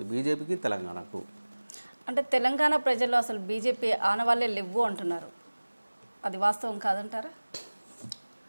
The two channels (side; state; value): both; inverted; correlation -1.00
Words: బీజేపీకి తెలంగాణకు. అంటే తెలంగాణ ప్రజల్లో అసలు బీజేపీ ఆనవాళ్ళే లేవు అంటున్నారు, అది వాస్తవం కాదంటారా?